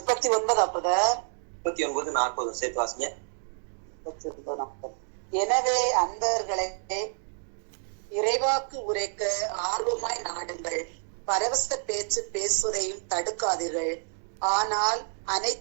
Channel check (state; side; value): silent; left; digital silence